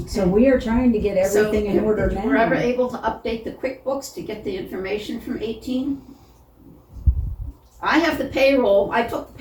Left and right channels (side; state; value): both; identical; correlation 1.00